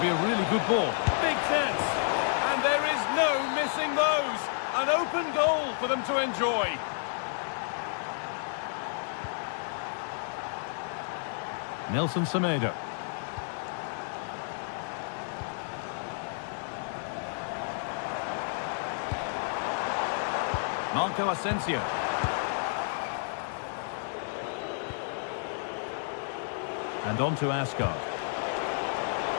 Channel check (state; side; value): silent; right; 57 dB below the other